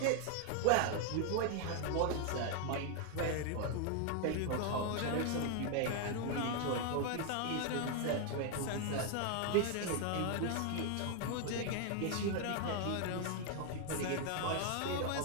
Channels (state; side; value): different; both; correlation 0.00